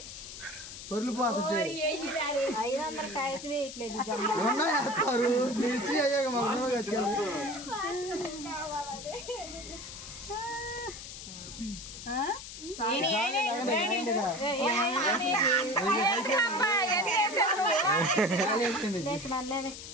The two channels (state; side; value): noise; left; hiss, 11 dB below the sound